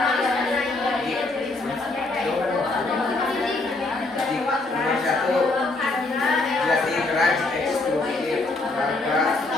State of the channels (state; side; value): quieter; right; 3.2 dB